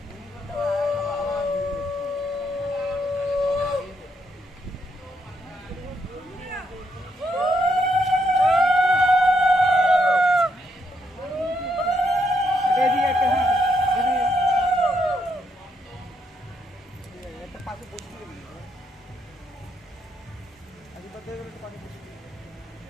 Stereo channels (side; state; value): both; normal; correlation 0.76